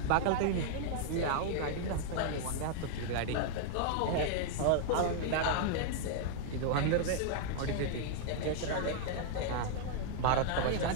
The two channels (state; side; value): different; both; correlation -0.01